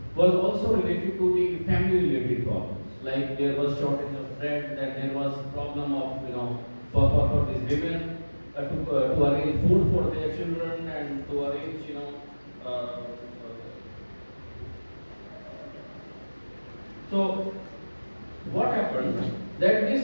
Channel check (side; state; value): both; inverted; correlation -1.00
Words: was also related to the family related problems. Like there was shortage of bread, that there was problem of, for these women to arrange food for their children and to arrange, so what happened that